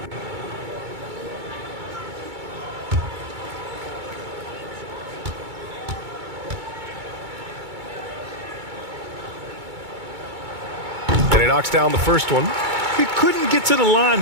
And he knocks down the first one. He couldn't get to the line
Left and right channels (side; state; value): left; late; 2.2 ms